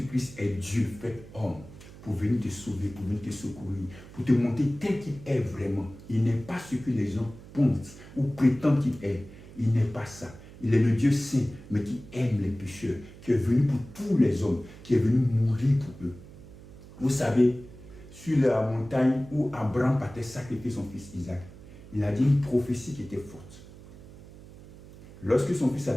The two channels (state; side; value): noise; right; hum, 18 dB below the sound